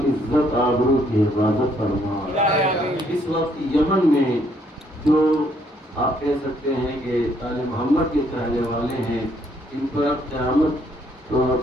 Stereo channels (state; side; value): normal; both; correlation 0.69